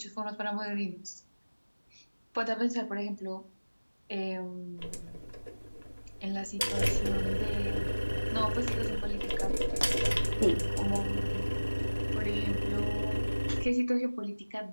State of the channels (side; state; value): both; inverted; correlation -1.00